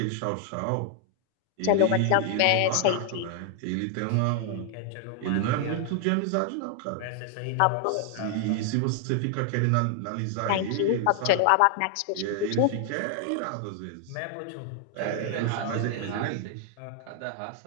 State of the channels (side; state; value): both; different; correlation 0.00